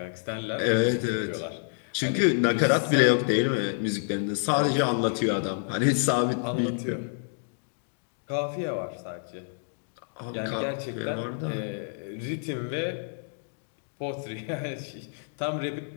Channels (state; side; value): silent; right; digital silence